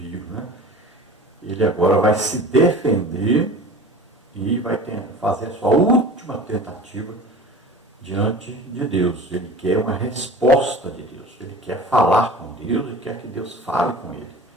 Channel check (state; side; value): normal; both; correlation 0.39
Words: né? Ele agora vai se defender e vai fazer a sua última tentativa diante de Deus. Ele quer uma resposta de Deus. Ele quer falar com Deus e quer que Deus fale com ele.